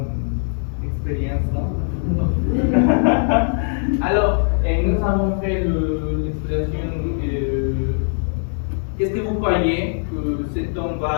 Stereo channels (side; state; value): right; silent; 65 dB below the other